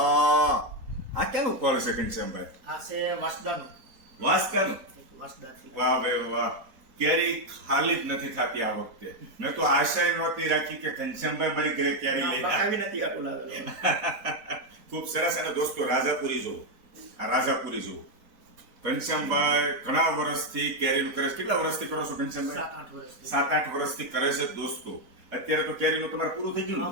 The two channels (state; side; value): late; left; 4.1 ms